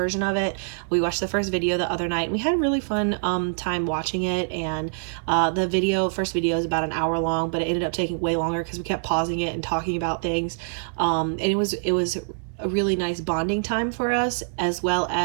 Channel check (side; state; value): left; silent; 62 dB below the other